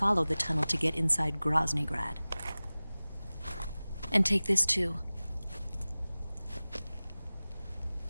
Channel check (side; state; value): both; inverted; correlation -0.98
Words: the tunnel to get inside Groznygrad. And take this too.